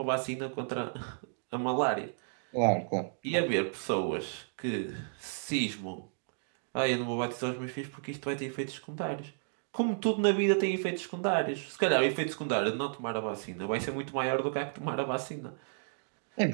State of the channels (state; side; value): silent; left; digital silence